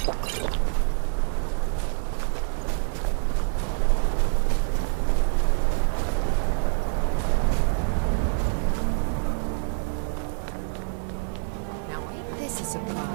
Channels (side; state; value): left; silent; 61 dB below the other